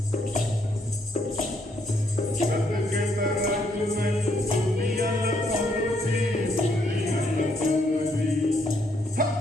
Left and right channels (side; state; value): both; normal; correlation 0.72